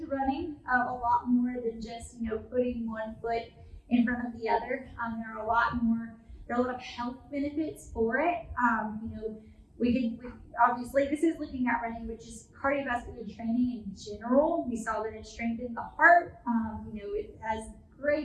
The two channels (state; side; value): identical; both; correlation 1.00